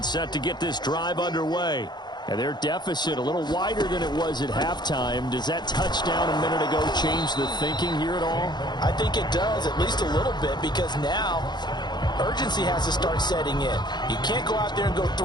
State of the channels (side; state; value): right; late; 0.21 ms